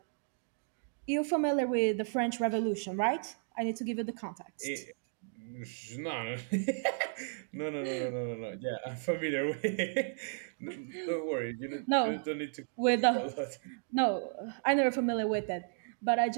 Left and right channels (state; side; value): silent; left; digital silence